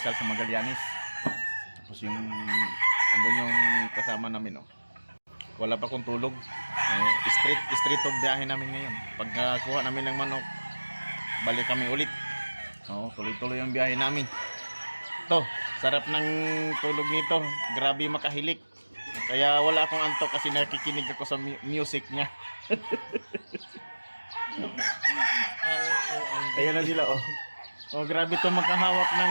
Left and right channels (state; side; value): inverted; both; correlation -1.00